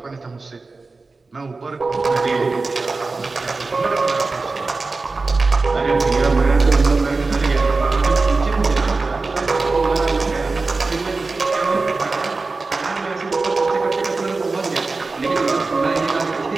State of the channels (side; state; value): left; quieter; 3.8 dB